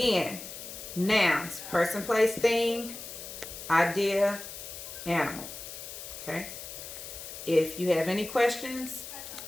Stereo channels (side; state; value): left; noise; hiss, 11 dB below the sound